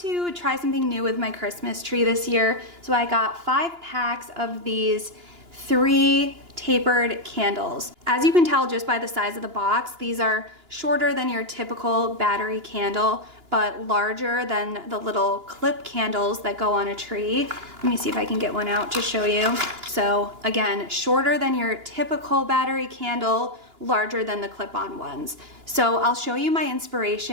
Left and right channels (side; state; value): left; late; 2.9 ms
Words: try something new with my Christmas tree this year. So I got 5 packs of these 3 tapered candles. As you can tell just by the size of the box, these are shorter than your typical battery candle, but larger than the little clip candles that go on a tree. Let me see if I can get one out to show you. So again, shorter than your typical battery candle, larger than the clip-on ones. So I'll show you my